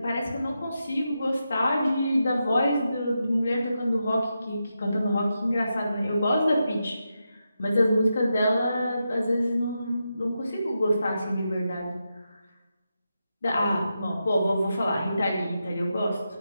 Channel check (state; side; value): inverted; both; correlation -0.87